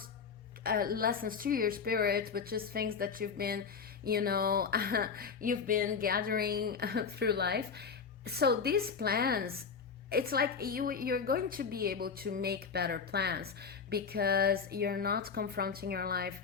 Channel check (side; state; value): right; quieter; 5.8 dB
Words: lessons to your spirit, but just things that you've been, you've been gathering through life. So these plans it's like you're going to be able to make better plans because you're not confronting your life